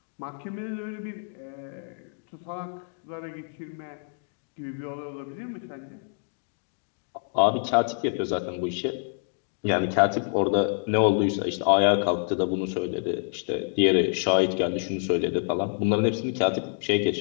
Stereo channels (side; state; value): right; silent; digital silence